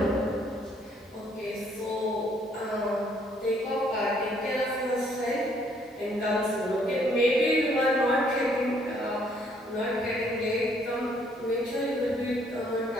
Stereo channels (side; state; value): both; normal; correlation 0.66